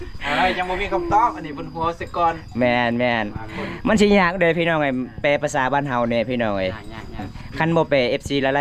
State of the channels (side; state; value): both; identical; correlation 1.00